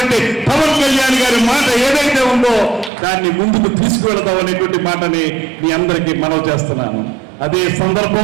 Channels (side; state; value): left; drops out; at 2.9 s